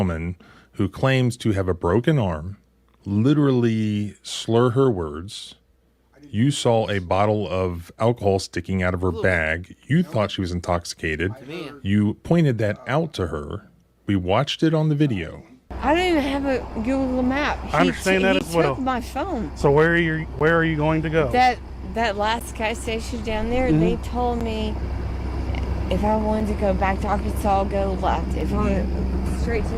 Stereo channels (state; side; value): identical; both; correlation 1.00